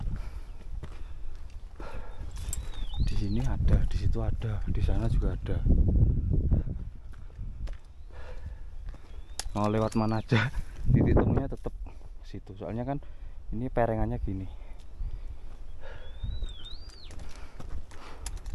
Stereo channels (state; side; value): identical; both; correlation 1.00